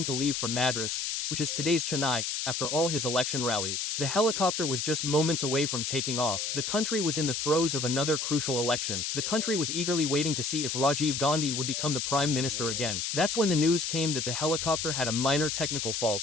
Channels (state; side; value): noise; left; hiss, 2 dB below the sound